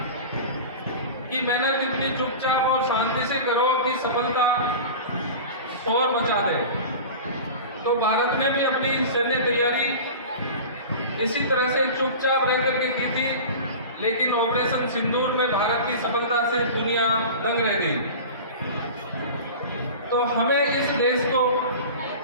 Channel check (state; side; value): inverted; both; correlation -0.34